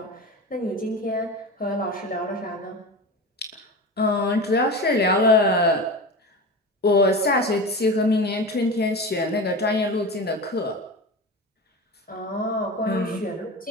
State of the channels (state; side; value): normal; both; correlation 0.27